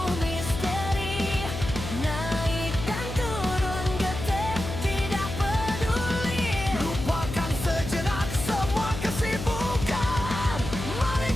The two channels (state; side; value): noise; left; hum, 7 dB below the sound